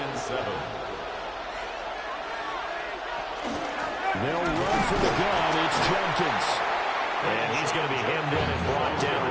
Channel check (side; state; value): both; identical; correlation 1.00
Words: 7. They'll run for the gun. It's Jenkins. And he's going to be hemmed in and brought down